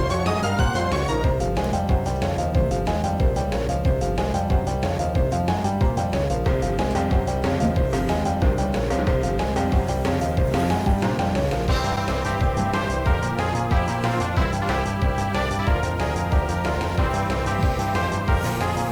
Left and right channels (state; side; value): identical; both; correlation 1.00